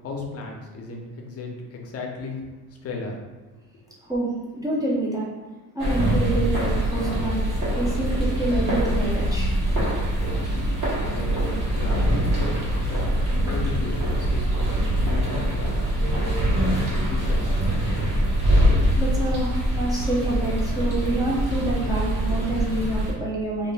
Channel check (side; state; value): both; normal; correlation 0.67